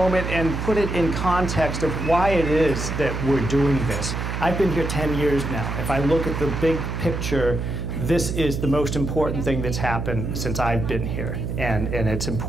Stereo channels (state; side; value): noise; right; hum, 3 dB below the sound